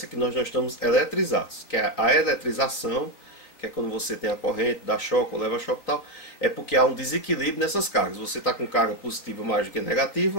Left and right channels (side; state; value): right; late; 3.8 ms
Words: é que nós não estamos eletrizados, que é a eletrização, que é quando você tem a corrente, dá choque ou leva choque e tal, é porque há um desequilíbrio nessas cargas. Você está com carga positiva mais do que